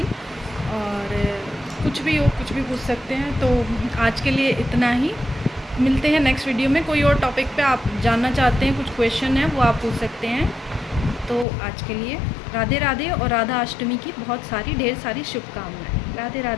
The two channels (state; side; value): drops out; right; at 11.5 s